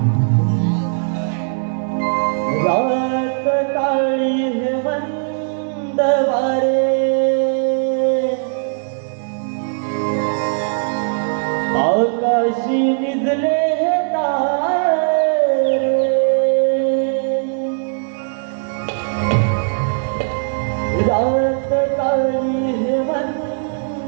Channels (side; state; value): left; silent; 57 dB below the other